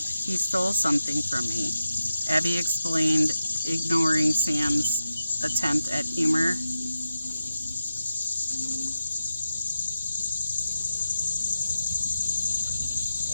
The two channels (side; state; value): both; inverted; correlation -0.90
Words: He stole something from me, Abby explained, ignoring Sam's attempt at humor.